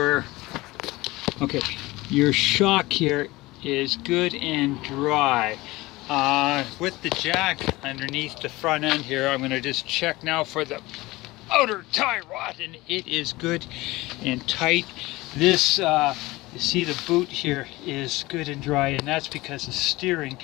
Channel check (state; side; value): quieter; right; 20.3 dB